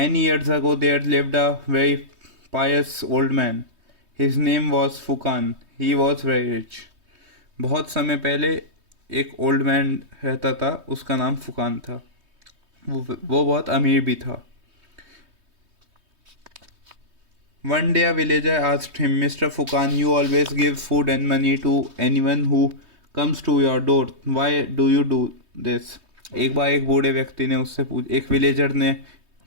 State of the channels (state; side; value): late; left; 3.2 ms